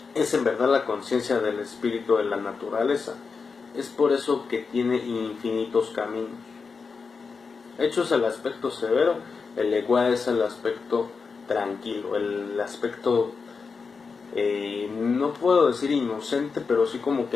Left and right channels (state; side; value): quieter; right; 5.0 dB